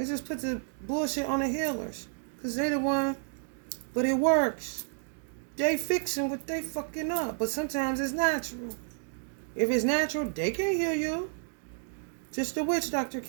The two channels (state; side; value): silent; left; 57 dB below the other